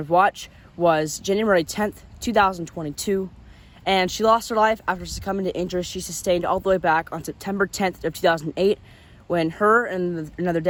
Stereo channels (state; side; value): identical; both; correlation 1.00